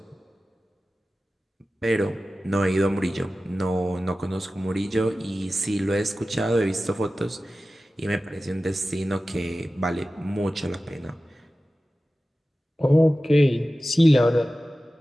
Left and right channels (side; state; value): both; normal; correlation 0.95